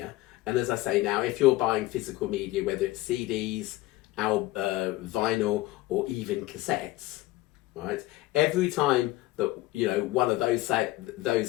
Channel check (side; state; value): right; quieter; 17.9 dB